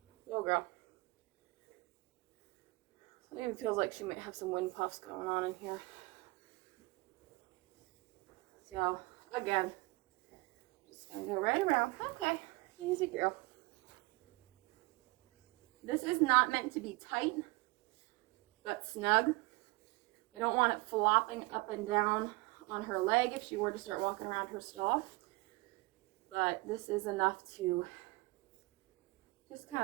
Oh, girl. It even feels like she might have some wind puffs going on in here. So, again, just going to go right around. Okay, easy girl. This is not meant to be tight, but snug. I don't want it flopping up and down on her leg if she were to start walking around her stall. But this is enough to just kind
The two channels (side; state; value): left; quieter; 24.5 dB